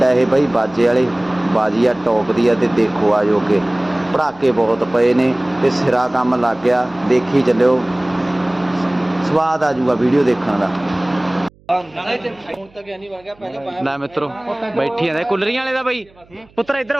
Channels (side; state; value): right; noise; hum, 29 dB below the sound